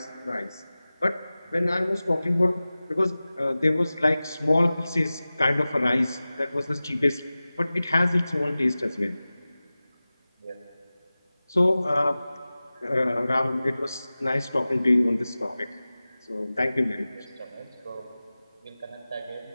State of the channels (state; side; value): inverted; both; correlation -0.97